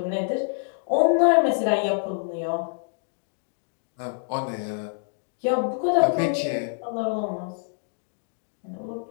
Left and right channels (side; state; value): right; silent; digital silence